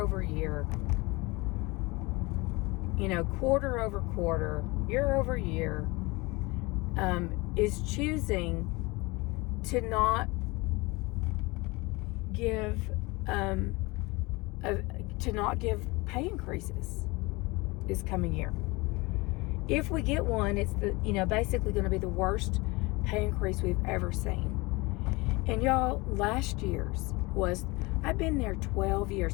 year, you know, quarter over quarter, year over year, is choosing to not give pay increases this coming year. If we get one, it's basically going to be the worst pay increase we've ever seen. And y'all, last year's I've been there 12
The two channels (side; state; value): right; quieter; 24.2 dB